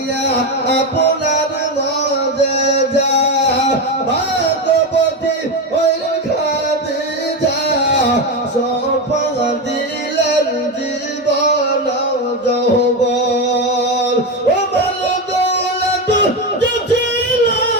আপনার মুআজিজা ভাগবতী ওল খাদিজা, সফা দিলেন জীবন যৌবন। ও দৌলত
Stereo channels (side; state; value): both; normal; correlation 0.14